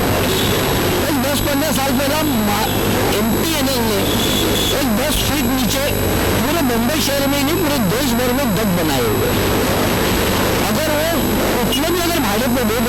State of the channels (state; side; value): identical; both; correlation 1.00